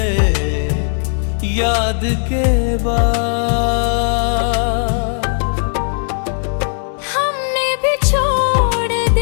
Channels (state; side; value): silent; right; digital silence